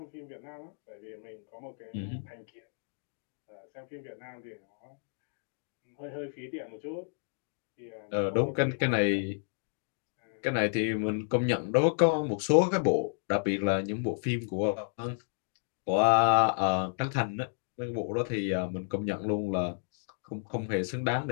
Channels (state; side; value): silent; right; digital silence